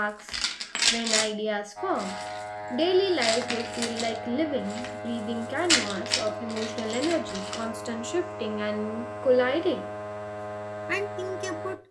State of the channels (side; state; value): both; identical; correlation 1.00